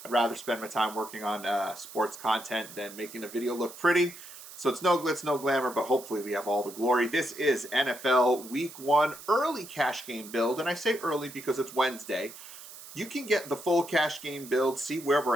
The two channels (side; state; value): right; noise; hiss, 15 dB below the sound